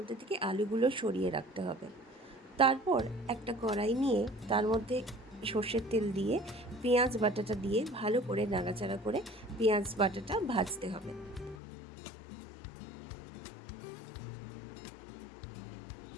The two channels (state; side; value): drops out; right; at 11.6 s